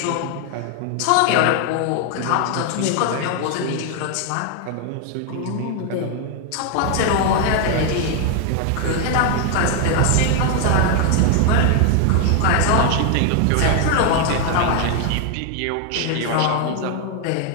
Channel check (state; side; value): different; both; correlation 0.00